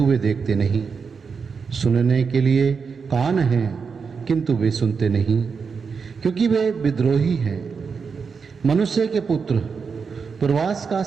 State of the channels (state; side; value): quieter; left; 5.6 dB